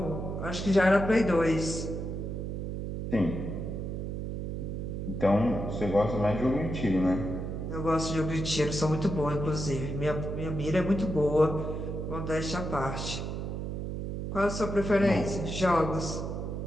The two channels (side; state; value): right; noise; hum, 4 dB below the sound